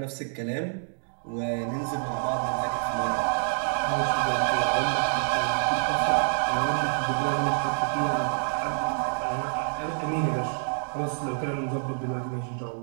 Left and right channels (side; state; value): left; silent; digital silence